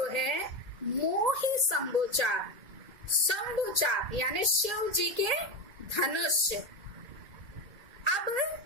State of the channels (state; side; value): late; left; 2.1 ms